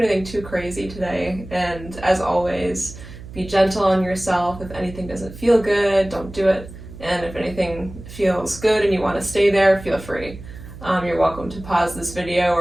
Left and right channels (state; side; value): noise; right; hum, 15 dB below the sound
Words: too crazy today. And as always, be gentle on yourself. If anything doesn't feel good, don't do it. And if anything feels good and you want to stay there, feel free. You're welcome to pause this video